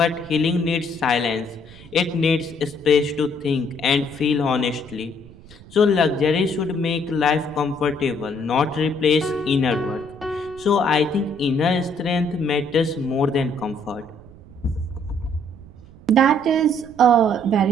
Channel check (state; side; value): noise; right; rumble, 21 dB below the sound